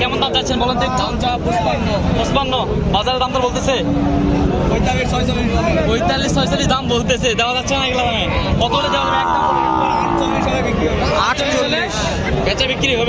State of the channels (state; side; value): identical; both; correlation 1.00